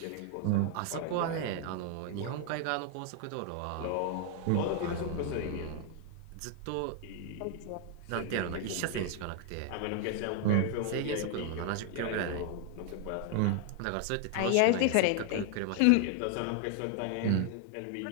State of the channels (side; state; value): both; different; correlation 0.00